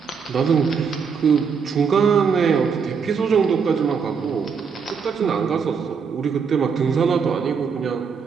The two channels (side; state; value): left; quieter; 6.0 dB